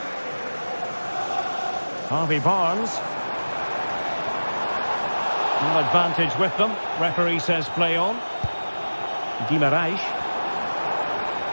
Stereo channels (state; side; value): inverted; both; correlation -1.00